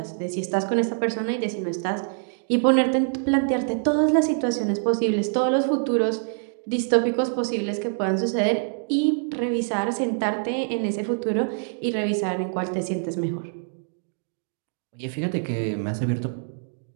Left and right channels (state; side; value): silent; left; digital silence